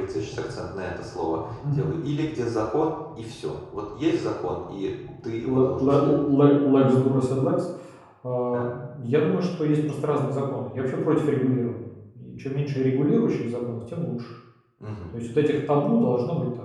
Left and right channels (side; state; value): both; identical; correlation 1.00